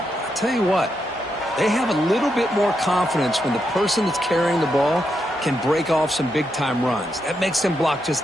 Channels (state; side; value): normal; both; correlation 0.83